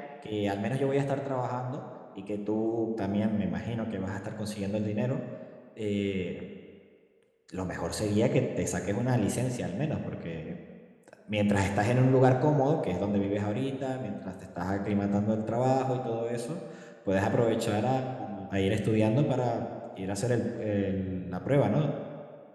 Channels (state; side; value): identical; both; correlation 1.00